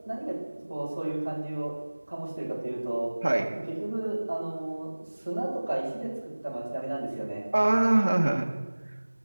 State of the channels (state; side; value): inverted; both; correlation -1.00